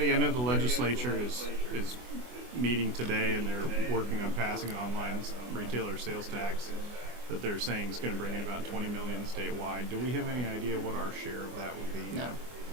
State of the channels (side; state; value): left; late; 24 ms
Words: I know the legislature is meeting today, and they're working on passing an online retailer sales tax that they're saying is going to bring in about $20 million statewide. Do we have any idea what our share of that would be? No,